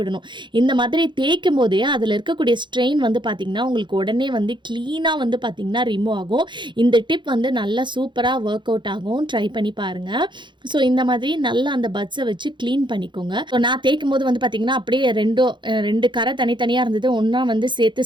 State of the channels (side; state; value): left; late; 0.23 ms